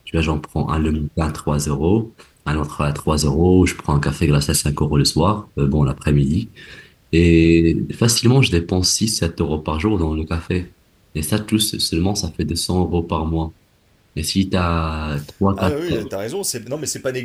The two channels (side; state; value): both; identical; correlation 1.00